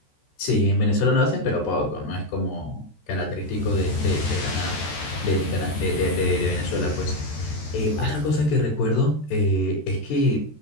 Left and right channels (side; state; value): right; late; 13 ms